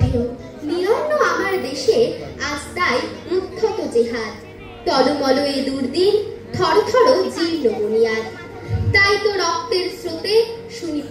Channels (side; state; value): both; identical; correlation 1.00